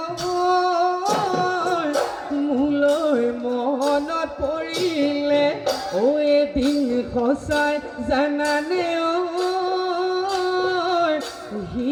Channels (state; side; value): identical; both; correlation 1.00